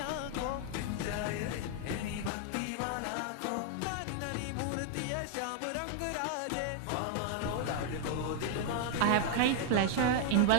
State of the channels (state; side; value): different; both; correlation 0.00